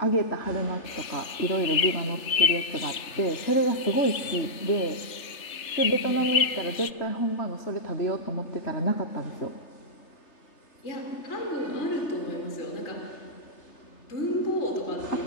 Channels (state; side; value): late; right; 3.3 ms